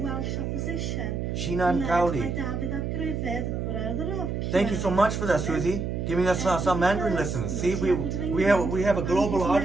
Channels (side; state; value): right; noise; hum, 2 dB below the sound